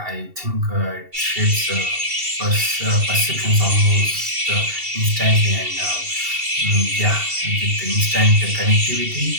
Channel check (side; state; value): left; late; 2.7 ms